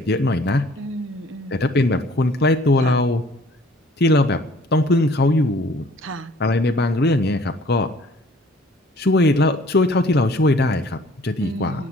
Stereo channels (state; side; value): normal; both; correlation 0.55